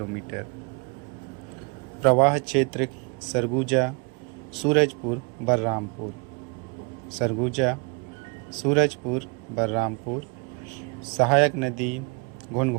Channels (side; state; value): left; quieter; 32.9 dB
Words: प्रवाह क्षेत्र सरगुजा सूरजपुर बलरामपुर। सरगुजा सूरजपुर बलरामपुर। सहायक नदी